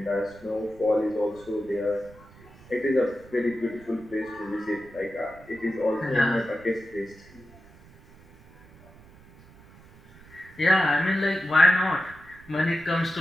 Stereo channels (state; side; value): noise; right; rumble, 23 dB below the sound